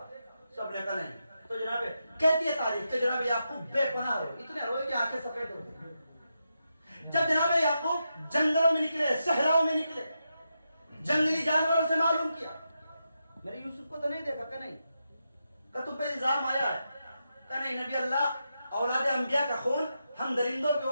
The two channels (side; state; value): both; inverted; correlation -0.86